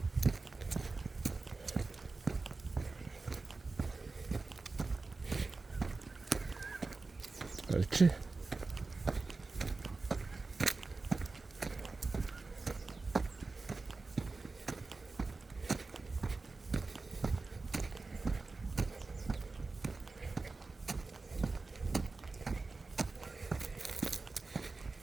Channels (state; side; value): quieter; left; 3.8 dB